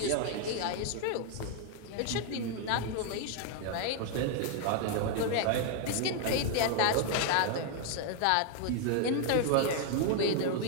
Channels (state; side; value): different; both; correlation 0.00